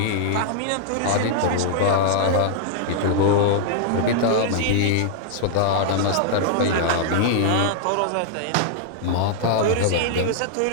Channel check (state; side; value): different; both; correlation -0.01